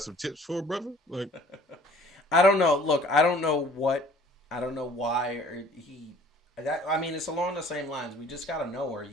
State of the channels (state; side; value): normal; both; correlation 0.53